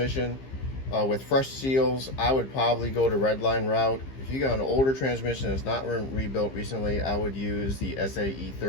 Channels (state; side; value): late; right; 15 ms